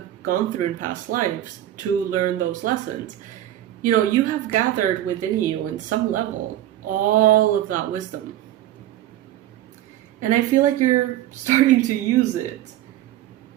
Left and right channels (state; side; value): quieter; left; 13.2 dB